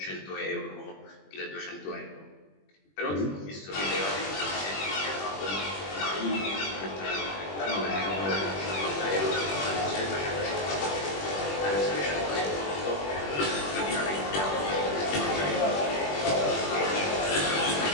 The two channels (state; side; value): late; right; 21 ms